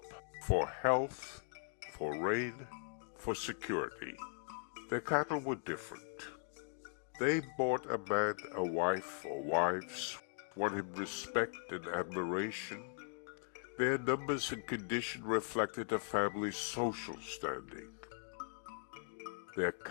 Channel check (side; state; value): right; silent; digital silence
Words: for health, for rain, for security. Their cattle were different. They bought a man a wife or wives, won him respect and admiration. Their numbers and condition reflected a family's social standing. Their